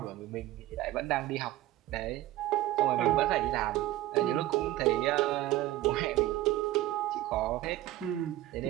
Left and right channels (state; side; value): quieter; left; 15.5 dB